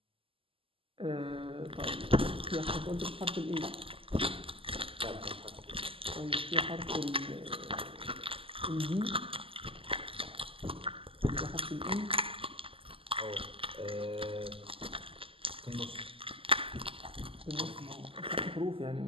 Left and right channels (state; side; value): late; left; 0.26 ms